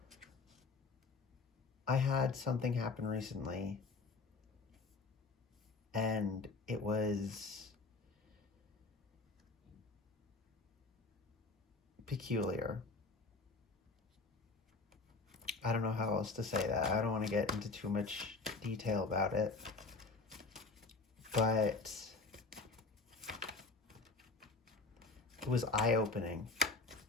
I had something happen recently, and it was peculiar. I don't know how else to say that. I don't want to get into too much detail about it, but it was eye-opening.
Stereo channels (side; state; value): right; quieter; 3.7 dB